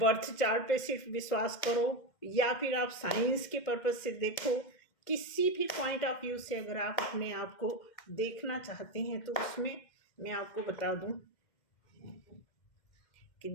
चार्ट पे सिर्फ विश्वास करो या फिर आप साइंस के पर्पज से देखो, किसी भी पॉइंट ऑफ व्यू से अगर आप अपने आप को देखना चाहते हैं तो उसमें मैं आपको बता दूं कि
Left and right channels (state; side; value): late; right; 2.1 ms